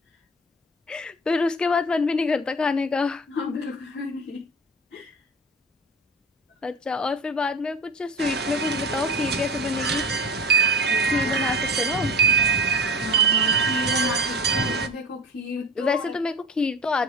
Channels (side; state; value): both; normal; correlation 0.34